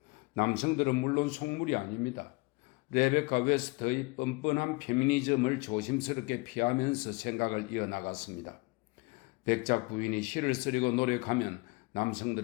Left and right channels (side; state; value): right; quieter; 26.1 dB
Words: 남성들은 물론 속물이 아닙니다. 레베카 웨스트의 뻔뻔한 페미니즘을 조심스럽게 피하면서 생각을 이어나갔습니다. 백작 부인이 시를 쓰려고 노력하면